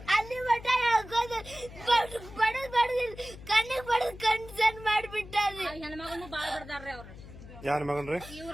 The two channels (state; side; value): noise; left; hum, 16 dB below the sound